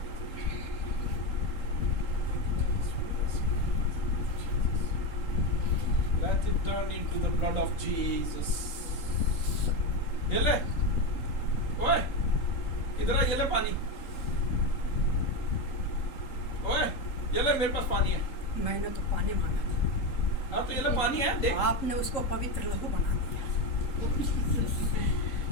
Let it turn into the blood of Jesus. ये ले, ओए, इधर आ, ये ले पानी। ओए, ये ले, मेरे पास पानी है। मैंने तो पानी मांगा था, हाँ तो ये ले पानी है, देख। आपने उसको पवित्र लहू बना दिया।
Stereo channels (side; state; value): right; late; 3.8 ms